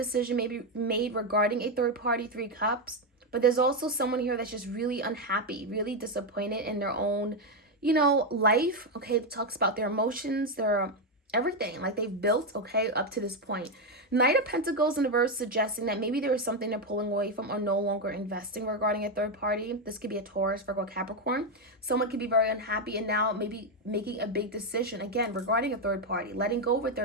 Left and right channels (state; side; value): normal; both; correlation 0.06